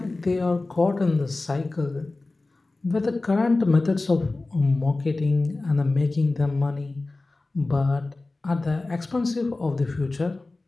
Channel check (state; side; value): quieter; right; 3.2 dB